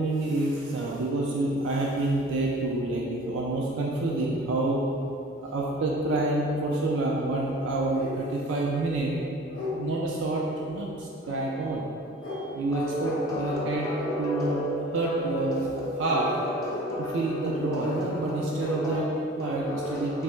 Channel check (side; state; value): both; normal; correlation 0.45